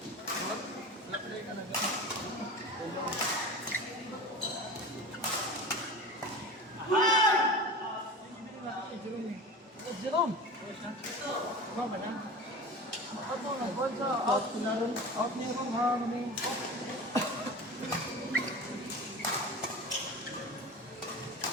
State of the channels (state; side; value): normal; both; correlation 0.32